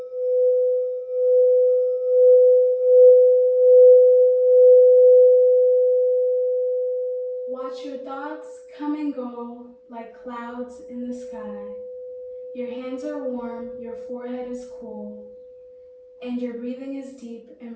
Watch your thoughts come and go like clouds in the sky. Your hands are warm, your forehead is cool, and your breathing is deep and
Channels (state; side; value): identical; both; correlation 1.00